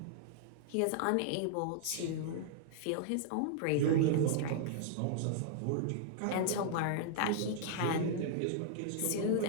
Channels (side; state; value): both; different; correlation -0.01